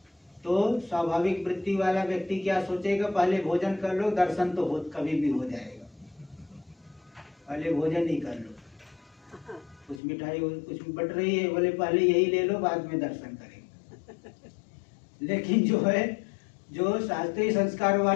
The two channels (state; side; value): drops out; right; at 10.0 s